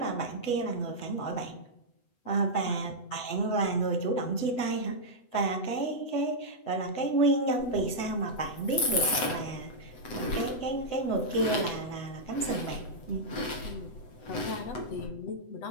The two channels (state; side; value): late; right; 8.0 ms